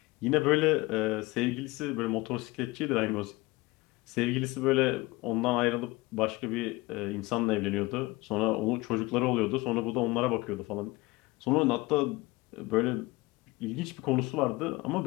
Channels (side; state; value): right; quieter; 21.7 dB